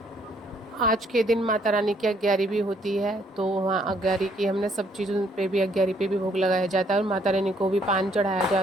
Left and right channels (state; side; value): normal; both; correlation 0.67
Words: आज के दिन माता रानी की अग्यारी भी होती है, तो वहाँ अग्यारी की हमने सब चीज़ों पे भी, अग्यारी पे भी भोग लगाया जाता है, और माता रानी को भी पान चढ़ाया